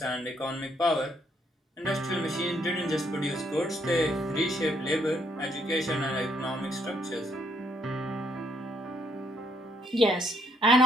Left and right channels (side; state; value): both; normal; correlation 0.72